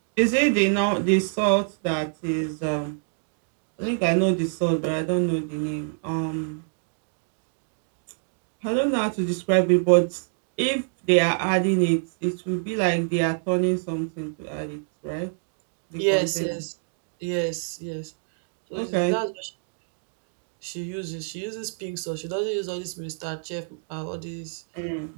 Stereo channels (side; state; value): left; silent; digital silence